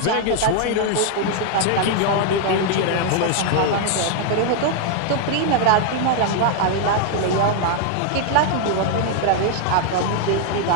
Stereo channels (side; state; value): both; different; correlation 0.00